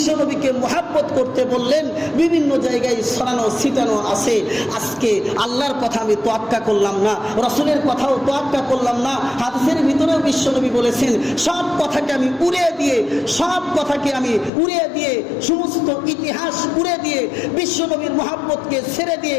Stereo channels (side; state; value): right; drops out; at 14.5 s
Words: নবীকে মুহাব্বত করতে বললেন, বিভিন্ন জায়গায় ছড়ানো ছিটানো আছে। আজকে আল্লাহর কথা আমি তোয়াক্কা করলাম না, রসুলের কথাও তোয়াক্কা করলাম না, হাদিসের ভিতরেও বিশ্ব নবী বলেছেন সব কথাকে আমি উড়িয়ে দিয়ে সমস্ত ইতিহাস উড়ে দিয়ে বিশ্ব নবীর মুহাব্বতকে ছেড়ে দিয়ে